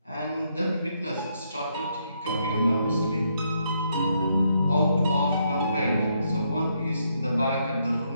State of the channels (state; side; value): inverted; both; correlation -0.76